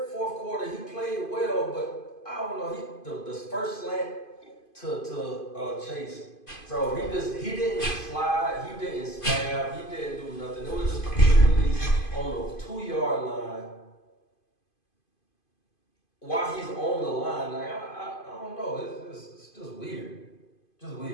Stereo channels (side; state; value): right; late; 2.5 ms